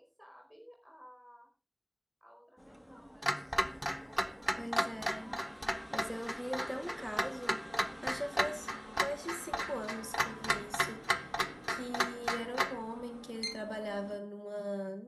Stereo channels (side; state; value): both; identical; correlation 1.00